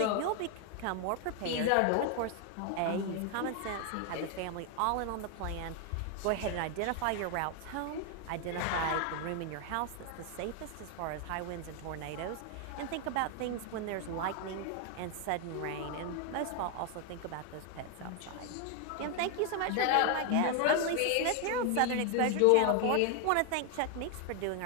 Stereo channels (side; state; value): both; different; correlation 0.01